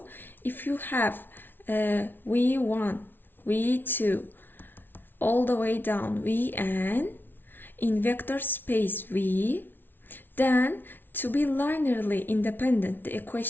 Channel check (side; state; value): right; late; 0.097 ms